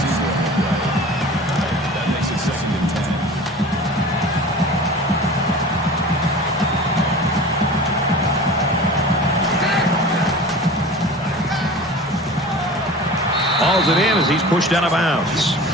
on the play. That makes it 2nd and 10. Hauls it in as he's pushed out of bounds.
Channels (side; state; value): both; normal; correlation 0.38